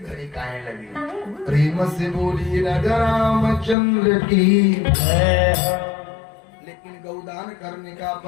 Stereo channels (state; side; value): drops out; right; at 3.8 s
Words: काहे लगी। प्रेम से बोली राजा रामचंद्र की। लेकिन गौदान करने का